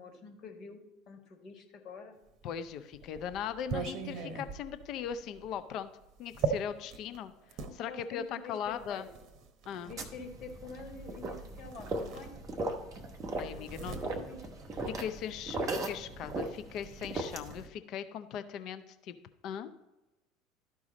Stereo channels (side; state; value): both; normal; correlation 0.44